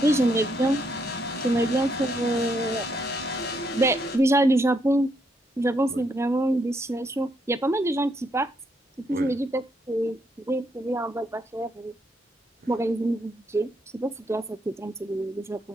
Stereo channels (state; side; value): normal; both; correlation 0.75